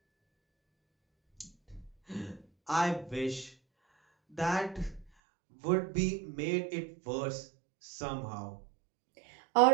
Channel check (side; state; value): left; drops out; at 5.1 s